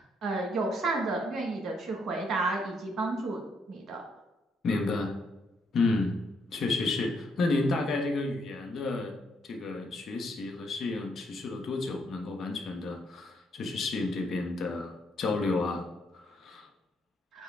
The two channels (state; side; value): normal; both; correlation 0.74